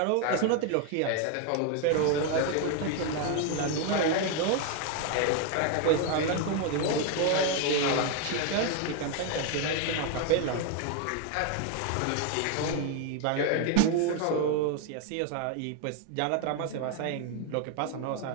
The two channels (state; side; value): different; both; correlation 0.01